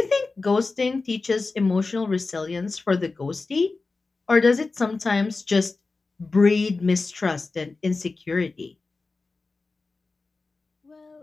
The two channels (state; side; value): quieter; right; 3.8 dB